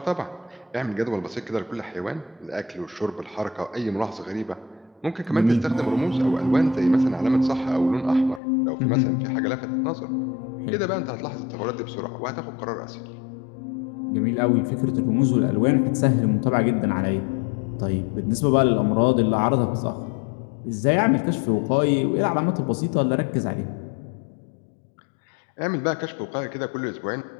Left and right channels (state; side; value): drops out; right; at 8.4 s